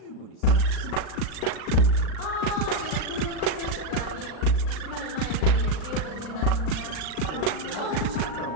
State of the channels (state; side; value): late; right; 38 ms